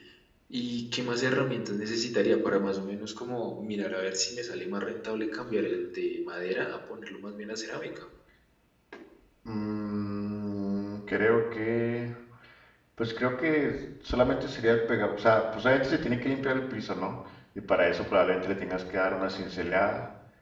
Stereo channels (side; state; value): both; identical; correlation 1.00